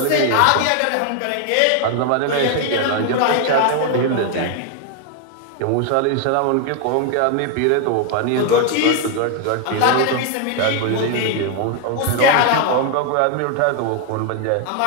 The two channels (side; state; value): both; different; correlation 0.01